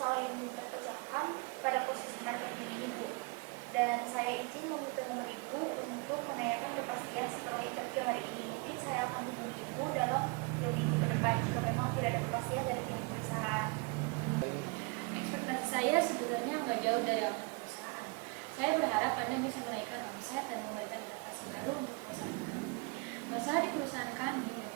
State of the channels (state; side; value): quieter; left; 28.9 dB